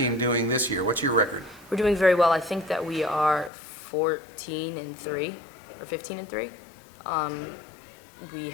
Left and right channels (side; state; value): right; drops out; at 3.5 s